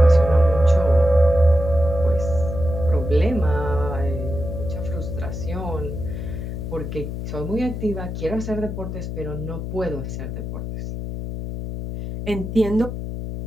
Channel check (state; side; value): noise; left; hum, 6 dB below the sound